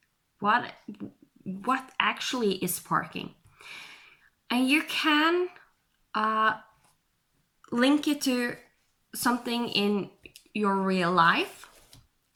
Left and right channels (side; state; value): both; identical; correlation 1.00